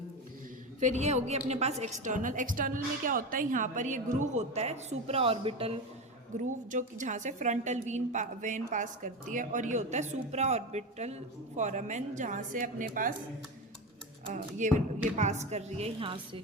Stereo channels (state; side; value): normal; both; correlation 0.20